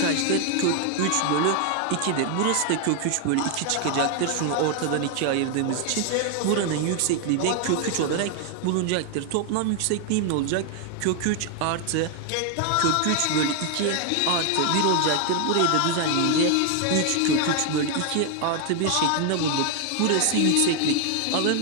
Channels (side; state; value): both; different; correlation 0.00